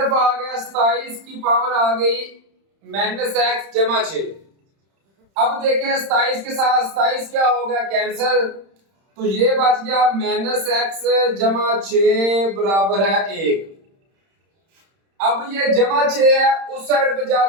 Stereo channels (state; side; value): late; left; 31 ms